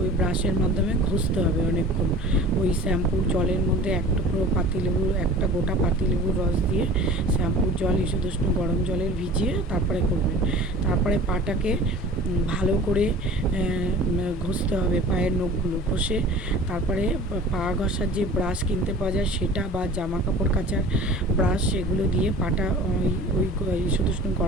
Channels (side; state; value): both; normal; correlation 0.42